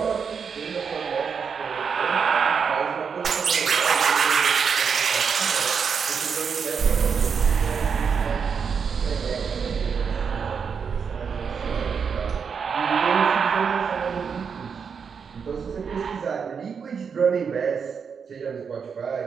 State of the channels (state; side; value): quieter; left; 6.3 dB